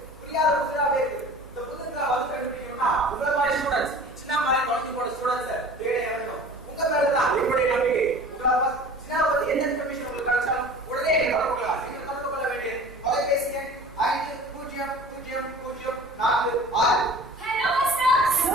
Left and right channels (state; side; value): noise; right; hum, 23 dB below the sound